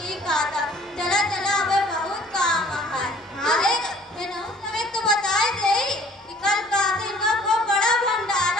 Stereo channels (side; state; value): both; normal; correlation 0.55